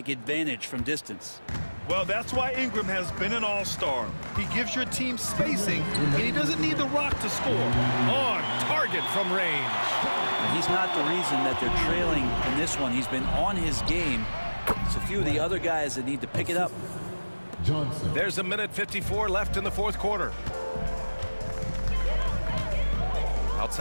advantage from distance. Well, that's why Ingram has been an all-star. He gives your team spacing, and he doesn't need the rock to score. On target from range. And he's not the reason that they're trailing in this one. He's been on his game. It's a few of the other guys that need to pick it up. Johnson. There's a minute 54 left in the fourth quarter.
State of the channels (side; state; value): both; inverted; correlation -1.00